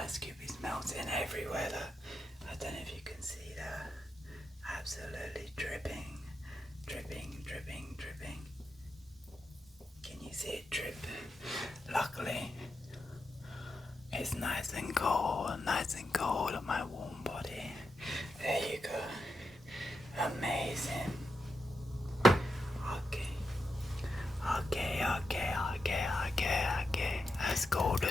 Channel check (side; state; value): both; normal; correlation 0.86